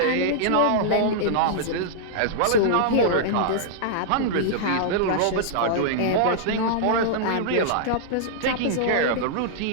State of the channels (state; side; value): different; both; correlation -0.02